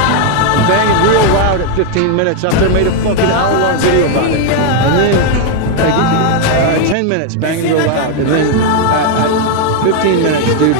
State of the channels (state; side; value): different; both; correlation 0.01